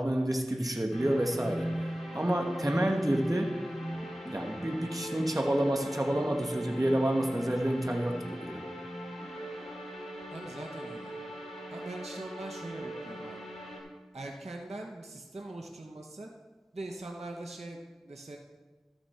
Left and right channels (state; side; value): normal; both; correlation 0.95